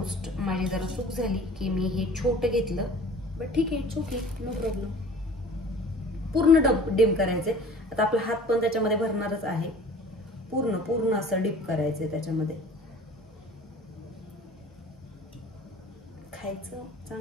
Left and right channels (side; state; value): both; normal; correlation 0.45